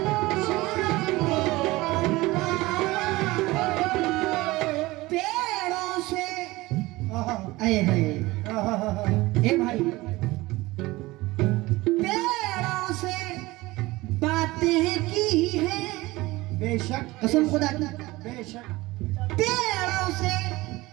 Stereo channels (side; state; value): left; quieter; 20.1 dB